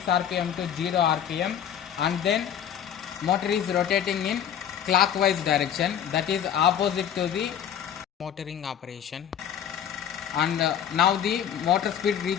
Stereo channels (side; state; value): right; quieter; 9.1 dB